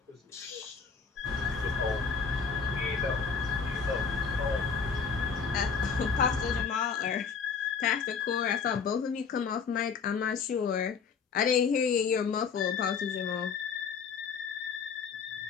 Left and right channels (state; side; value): quieter; right; 5.9 dB